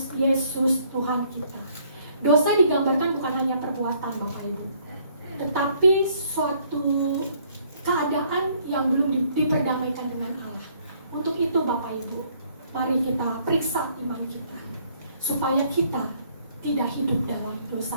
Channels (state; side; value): inverted; both; correlation -0.64